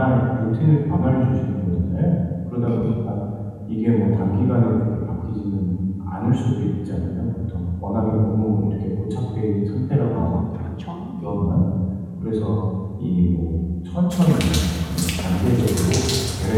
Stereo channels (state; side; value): identical; both; correlation 1.00